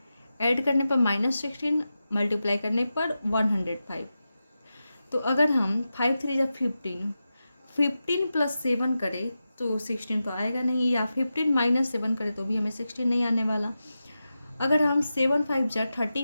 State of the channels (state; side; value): inverted; both; correlation -0.92